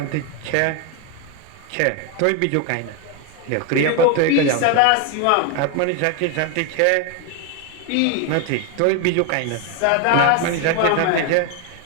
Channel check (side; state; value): both; different; correlation 0.01